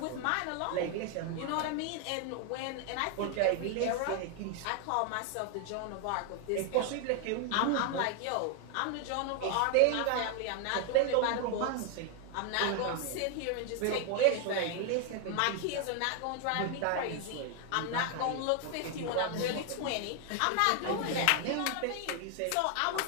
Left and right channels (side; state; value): both; different; correlation 0.00